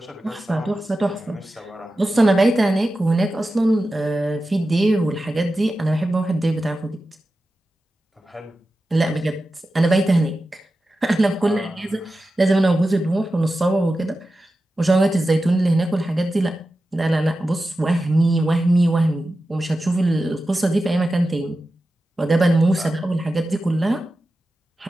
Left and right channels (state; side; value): normal; both; correlation 0.93